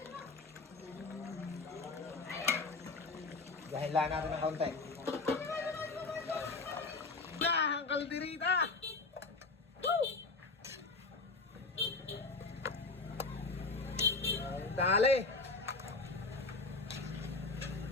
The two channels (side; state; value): right; quieter; 3.7 dB